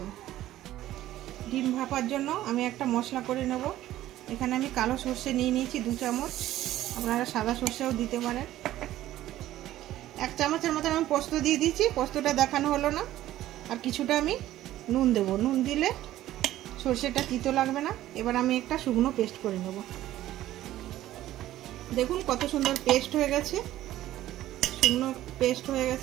ডিম ভাপার জন্য আমি একটা মশলা করে নেব। এখানে আমি কালো সর্ষে নিয়ে নিয়েছি 2 চামচ, আপনারা সাদা সর্ষেও দিতে পারেন। 1 চামচের মতন আমি পোস্ত দিয়ে দিয়েছি, পোস্তটা দেখানো হলো না। আর কিছুটা আমি নুন দেবো, নুন দিলে সর্ষেটা তিতো লাগবে না। এবার আমি একটা শুকনো পেস্ট করে নেব। দেখুন কত সুন্দর পেস্ট হয়ে গেছে, শুকনো পেস্ট হয়ে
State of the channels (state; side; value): quieter; left; 14.1 dB